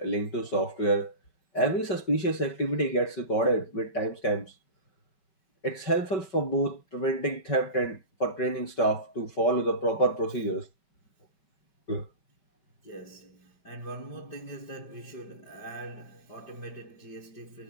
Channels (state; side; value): late; right; 5.3 ms